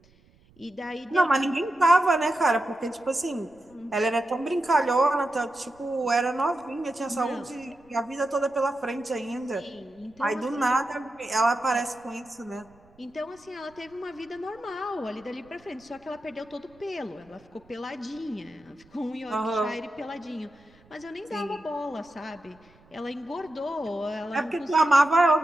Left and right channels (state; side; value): noise; right; rumble, 29 dB below the sound